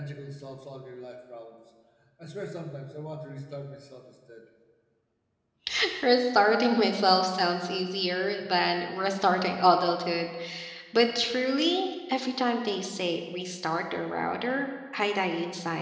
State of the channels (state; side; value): identical; both; correlation 1.00